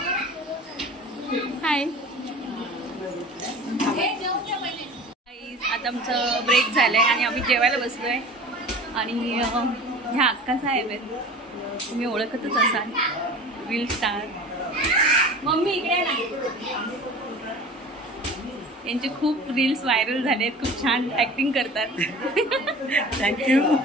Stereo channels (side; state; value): both; normal; correlation 0.39